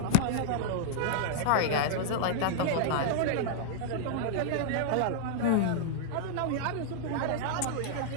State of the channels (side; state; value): both; different; correlation -0.01